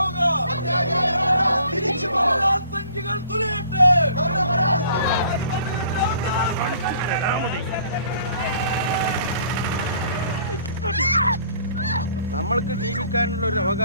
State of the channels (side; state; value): both; inverted; correlation -0.56